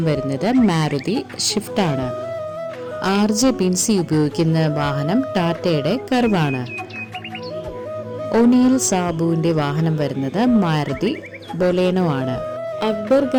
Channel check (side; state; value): both; identical; correlation 1.00